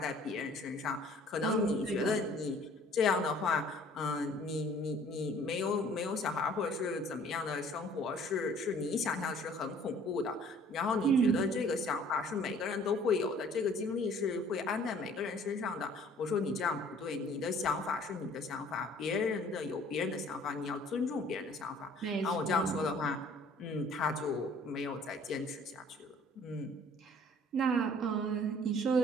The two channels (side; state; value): both; normal; correlation 0.54